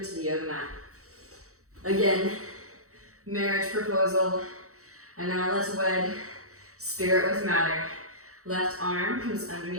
the yoga mat. Again, marriage proposal. And now let's wed spirit with matter. Left arm comes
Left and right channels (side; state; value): left; late; 0.65 ms